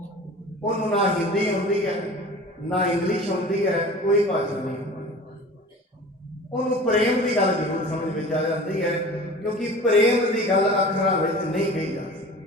ਉਹਨੂੰ ਨਾ ਹਿੰਦੀ ਆਉਂਦੀ ਹੈ, ਨਾ ਇੰਗਲਿਸ਼ ਆਉਂਦੀ ਹੈ, ਕੋਈ ਭਾਸ਼ਾ ਨਹੀਂ ਆਉਂਦੀ। ਉਹਨੂੰ ਪ੍ਰੇਮ ਦੀ ਗੱਲ ਜ਼ਰੂਰ ਸਮਝ ਵਿੱਚ ਆ ਜਾਂਦੀ ਹੈ, ਕਿਉਂਕਿ ਪ੍ਰੇਮ ਦੀ ਗੱਲ ਅੱਖਰਾਂ ਵਿੱਚ ਨਹੀਂ ਕਹੀ ਜਾ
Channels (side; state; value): both; normal; correlation 0.40